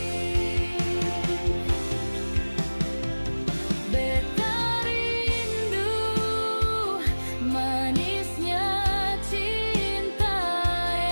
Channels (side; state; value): both; inverted; correlation -1.00